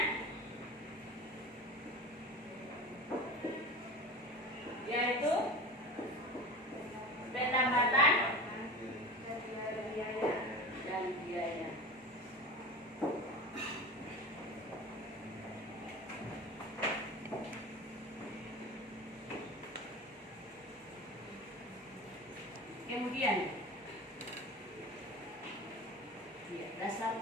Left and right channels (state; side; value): normal; both; correlation 0.32